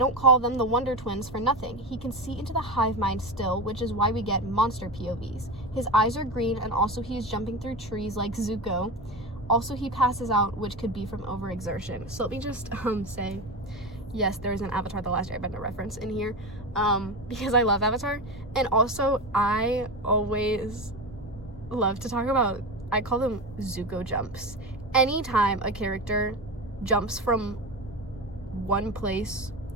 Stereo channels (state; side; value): normal; both; correlation 0.22